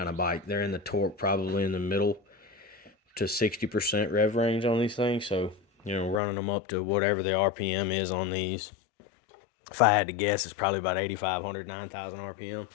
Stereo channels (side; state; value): right; drops out; at 6.2 s